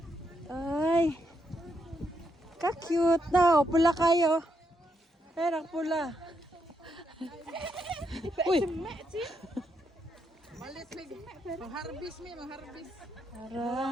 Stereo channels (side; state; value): both; normal; correlation 0.79